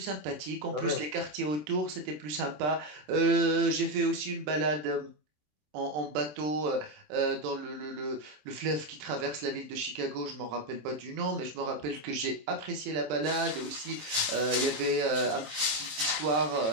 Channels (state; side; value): late; left; 27 ms